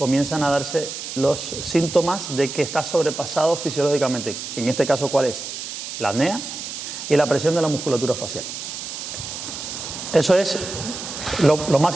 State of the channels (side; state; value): right; noise; hiss, 8 dB below the sound